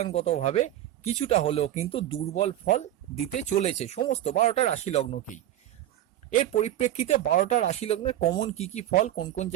কিছুটা হলেও কিন্তু দুর্বল ফল দিতে চলেছে সমস্ত 12টা রাশি লগ্নকেই। এর পরিপ্রেক্ষিতে 12টা রাশি লগ্নের কমন কি কি ফল, কোন কোন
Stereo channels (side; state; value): left; quieter; 12.8 dB